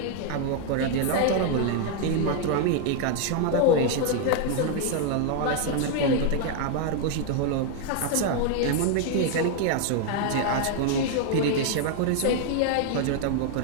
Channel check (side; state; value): both; different; correlation 0.00